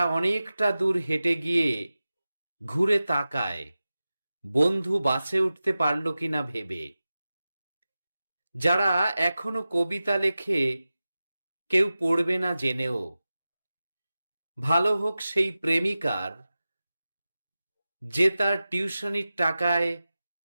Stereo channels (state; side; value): inverted; both; correlation -0.95